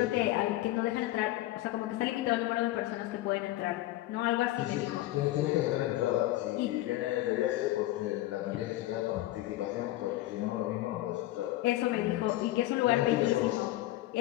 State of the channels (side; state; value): right; quieter; 16.2 dB